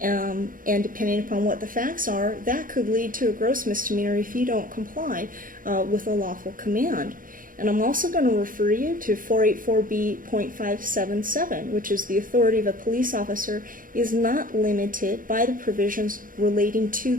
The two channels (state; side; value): late; left; 0.40 ms